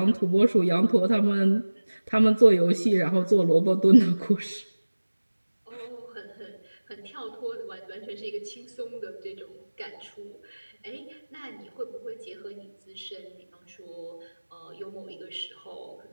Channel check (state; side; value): inverted; both; correlation -1.00